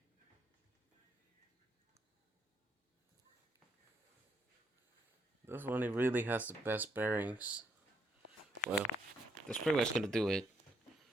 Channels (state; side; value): normal; both; correlation 0.73